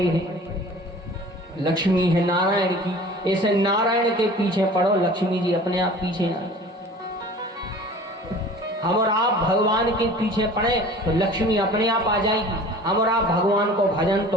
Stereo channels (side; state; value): both; normal; correlation 0.44